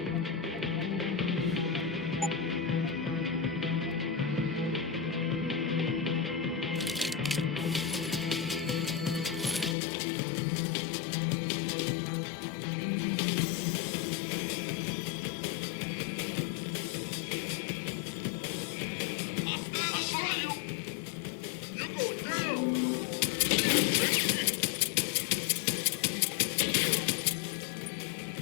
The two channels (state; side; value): drops out; right; at 9.8 s